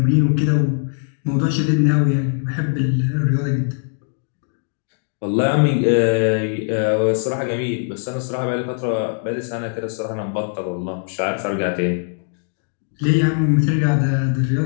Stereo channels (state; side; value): silent; right; 65 dB below the other